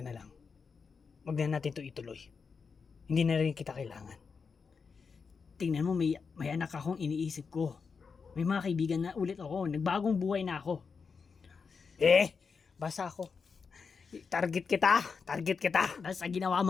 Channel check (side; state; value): right; quieter; 5.4 dB